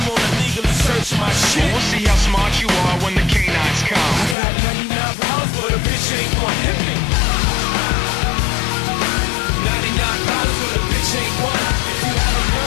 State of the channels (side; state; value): right; drops out; at 4.4 s